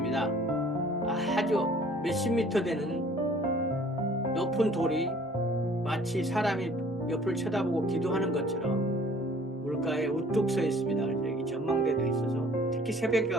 아주 몇십 미터 되는 높은 돌이 마치 사람이 옆을 쳐다보고 기도하는 것처럼 물가에 우뚝 서 있습니다. 그래서 여기 전망대도 있어서 특히 새벽에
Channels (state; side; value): normal; both; correlation 0.53